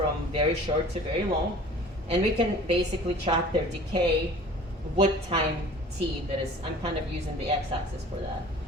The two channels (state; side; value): normal; both; correlation 0.45